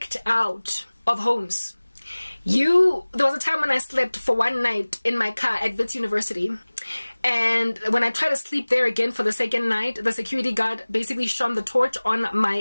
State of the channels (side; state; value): both; inverted; correlation -1.00